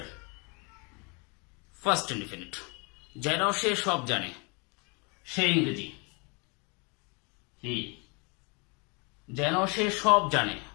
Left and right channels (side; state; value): right; quieter; 32.1 dB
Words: first indefinite. যেন সে সব জানে, সে ইংরেজি, he. যেন সে সব জানে,